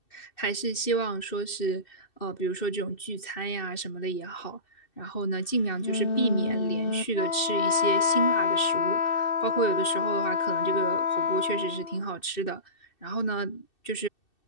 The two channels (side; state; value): right; late; 2.6 ms